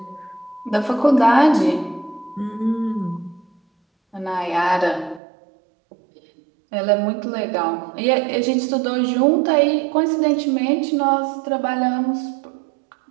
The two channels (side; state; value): left; drops out; at 5.2 s